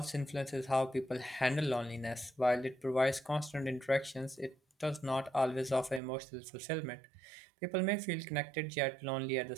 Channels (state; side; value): drops out; left; at 6.0 s